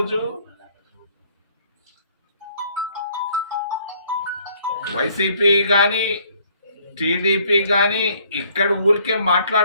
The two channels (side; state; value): both; inverted; correlation -0.62